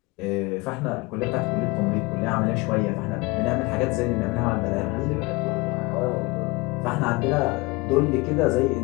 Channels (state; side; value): quieter; right; 24.6 dB